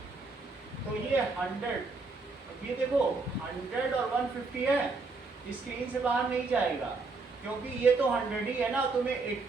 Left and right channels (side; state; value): left; quieter; 3.9 dB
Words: तो ये 100 ये देखो 100 और 150 है स्क्रीन से बाहर नहीं जाएगा क्योंकि ये तो 100 ही है ना तुम्हें